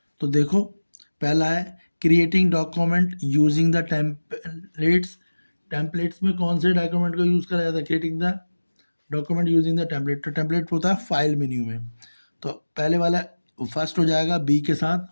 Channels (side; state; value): both; inverted; correlation -1.00